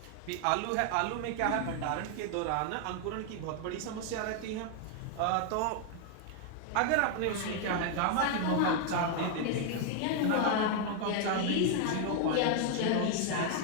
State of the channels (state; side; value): different; both; correlation 0.00